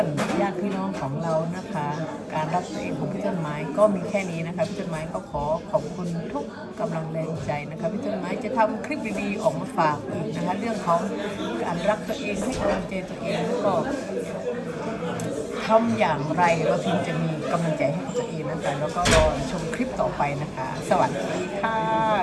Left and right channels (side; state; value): both; identical; correlation 1.00